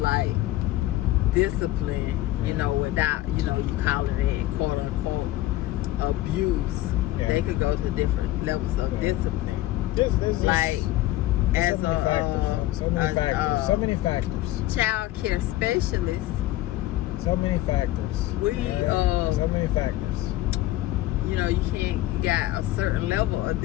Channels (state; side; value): quieter; right; 15.9 dB